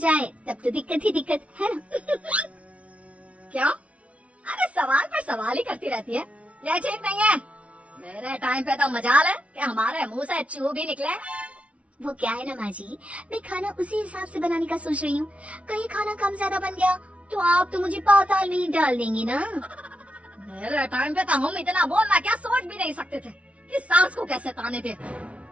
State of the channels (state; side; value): late; left; 0.064 ms